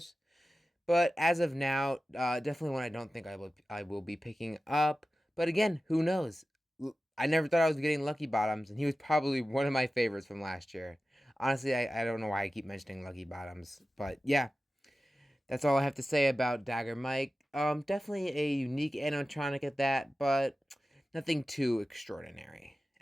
But as of now, definitely one I don't think I will be picking up. But again, who knows? I never thought I was getting Lucky Bottoms, and he was probably one of my favorites from last year. Honestly, I don't know why I keep mentioning Lucky Bottoms, but yeah, that's all I have to say about Dagger Mike. Definitely a unique animatronic at that, but nothing too extraordinary.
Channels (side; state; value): both; normal; correlation 0.94